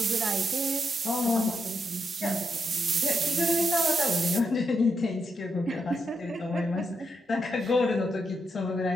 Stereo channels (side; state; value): both; normal; correlation 0.82